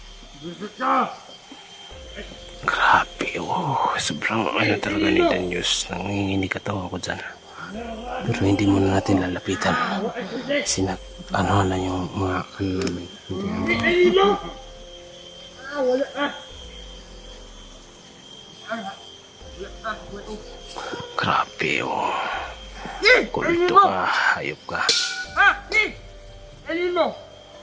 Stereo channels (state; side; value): identical; both; correlation 1.00